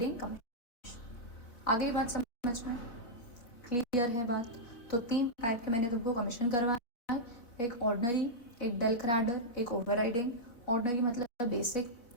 कमीशन। आ गई बात समझ में, क्लियर है बात? तो 3 टाइप के मैंने तुमको कमीशन करवाया, एक ऑर्डनरी, एक डेल क्रैडर, एक ओवरराइडिंग। ऑर्डनरी मतलब बेसिक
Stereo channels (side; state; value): right; late; 4.2 ms